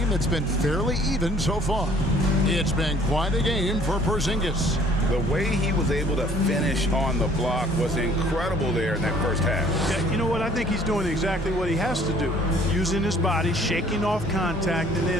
that's been fairly even so far. It's been quite a game for Porzingis. The way he was able to finish on the block was incredible there in that first half. Yeah, you know what? I think he's doing exactly what he has to do. Using his body, shaking off contact, and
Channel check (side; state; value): both; normal; correlation 0.56